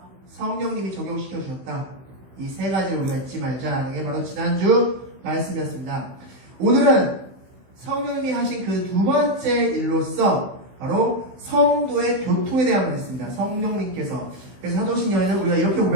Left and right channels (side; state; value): left; late; 16 ms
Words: 성령님이 적용시켜 주셨다. 이 세 가지를 우리가 잊지 말자. 이게 바로 지난주 말씀이었습니다. 오늘은 성령님이 하신 그 두 번째 일로서 바로 성도의 교통에 대한 말씀입니다. 성령님께서. 그래서 사도신경에는 우리가 이렇게